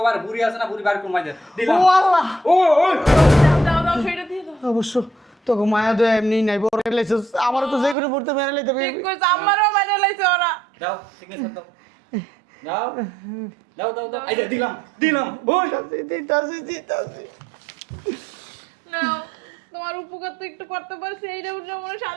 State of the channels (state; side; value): drops out; left; at 8.0 s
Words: বার বুড়ি আছে না, বুড়ি বার কমাই দে দিলাম। ও আল্লাহ, ও ওই দাও দাও সইটা দিয়ে দাও। অবশ্য তোকে মায়া দয়া এমনি নাই, বড় লাইছিস, আমারও তো যে কোনো মুহূর্তে মেরে লাইতে ঠিক কইছ, আমারও মেরে লাইছে ওরা। দাও সিগনেচার দাও। দাও দাও দাও দাও। এই যে দিলাম দিলাম। ওই দিতাছি। নাও, তোমার উপকার তো একটু করতে পারছি, এইটা বুঝে মনে